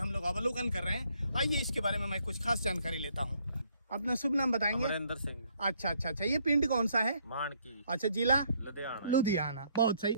लोग अवलोकन कर रहे हैं। आइए इसके बारे में मैं कुछ खास जानकारी लेता हूं। अपना शुभ नाम बताएंगे? अमरिंदर सिंह। अच्छा, ये पिंड कौन सा है? मानकी। अच्छा, जिला लुधियाना। बहुत सही।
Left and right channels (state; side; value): inverted; both; correlation -0.69